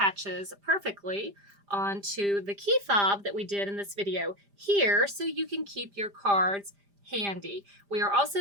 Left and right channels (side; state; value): left; late; 5.0 ms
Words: perfectly onto the key fob that we did in this video here, so you can keep your cards handy. We are also